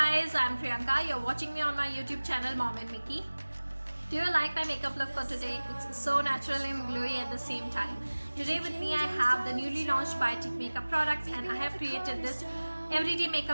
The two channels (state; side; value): inverted; both; correlation -1.00